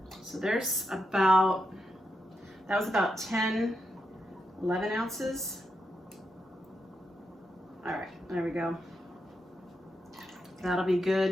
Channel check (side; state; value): both; normal; correlation 0.84